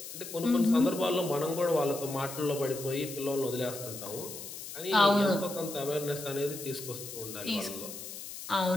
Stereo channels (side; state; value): left; noise; hiss, 10 dB below the sound